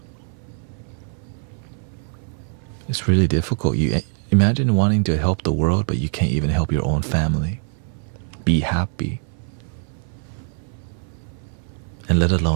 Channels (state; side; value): silent; left; 59 dB below the other